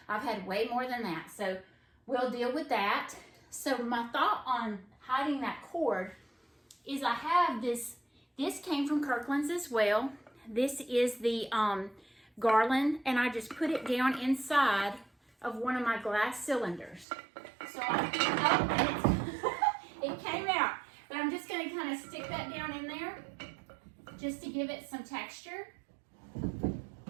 I've had way more than that, so we'll deal with that. So my thought on hiding that cord is I have this came from Kirkland's as well. This is the garland, and I just put it down inside of one of my glass cylinders. So it came out, but I'm just going to kind of stick that down in there just to give it some texture.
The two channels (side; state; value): left; drops out; at 17.1 s